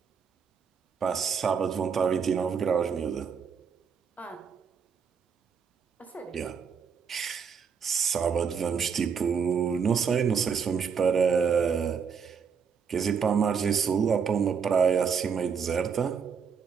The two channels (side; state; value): left; quieter; 6.5 dB